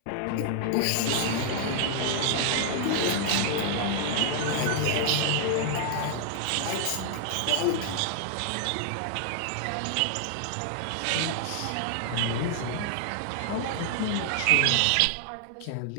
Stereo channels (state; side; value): different; both; correlation 0.00